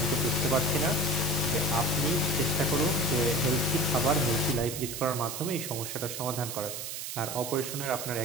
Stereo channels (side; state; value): right; noise; hiss, 6 dB below the sound